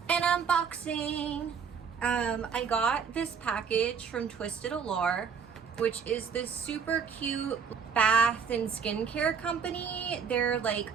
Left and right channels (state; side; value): quieter; left; 6.4 dB